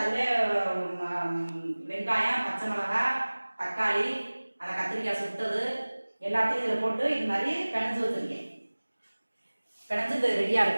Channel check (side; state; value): both; inverted; correlation -1.00